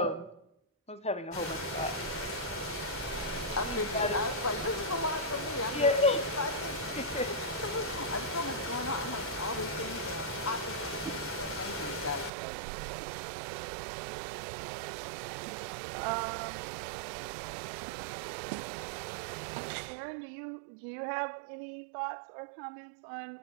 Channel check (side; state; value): left; drops out; at 12.3 s